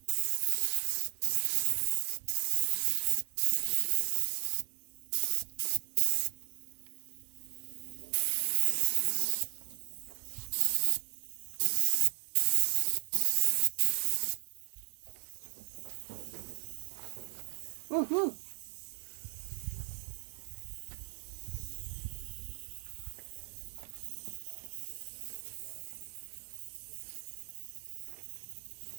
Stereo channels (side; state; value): left; silent; digital silence